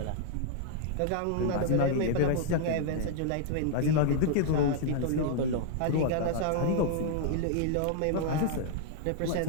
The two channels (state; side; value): different; both; correlation -0.01